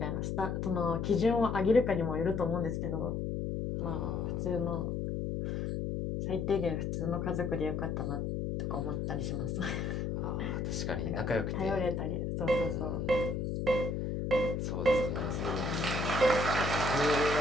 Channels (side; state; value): left; noise; hum, 1 dB below the sound